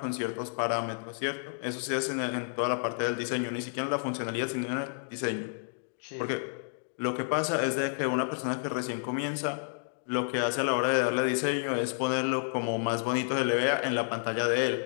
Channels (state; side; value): silent; right; digital silence